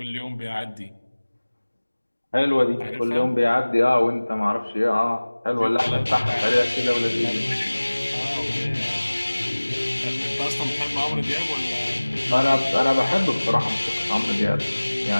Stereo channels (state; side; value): inverted; both; correlation -1.00